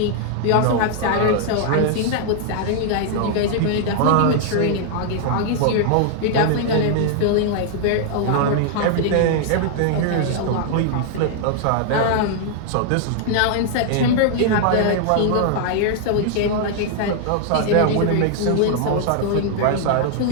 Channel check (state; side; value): different; both; correlation 0.00